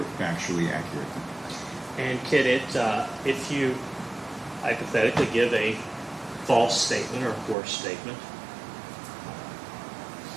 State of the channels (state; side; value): drops out; left; at 7.6 s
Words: factually accurate. And can it, if you hypothetically give a false statement or a coarse statement,